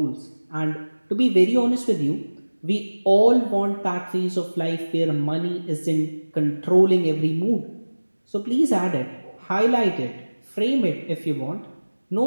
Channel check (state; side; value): inverted; both; correlation -1.00